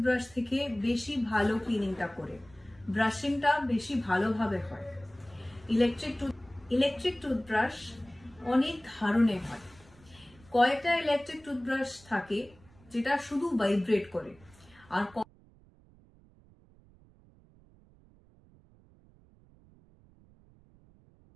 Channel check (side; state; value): right; noise; rumble, 27 dB below the sound